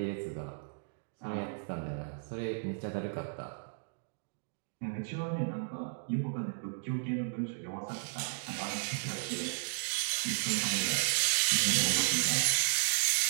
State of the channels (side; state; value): left; silent; digital silence